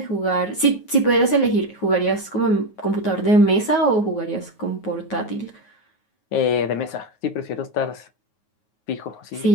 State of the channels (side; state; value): right; late; 9.4 ms